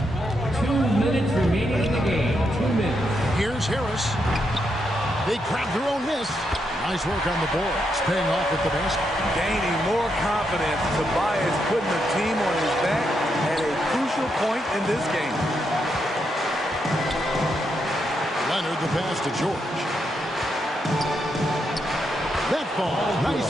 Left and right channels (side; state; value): both; normal; correlation 0.81